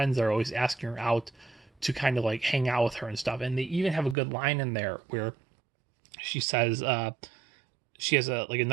that are always asking her out to kind of like hang out with her and stuff. And they even have a good line in there where she says she has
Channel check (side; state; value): left; drops out; at 4.2 s